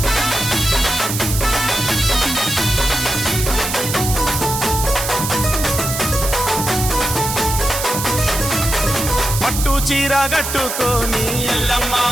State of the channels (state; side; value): noise; right; hiss, 4 dB below the sound